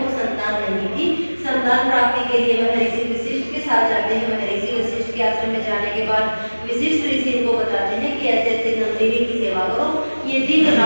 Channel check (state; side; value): inverted; both; correlation -1.00